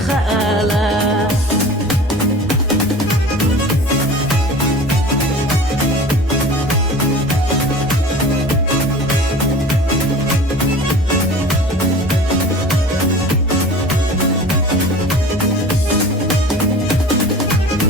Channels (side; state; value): both; normal; correlation 0.40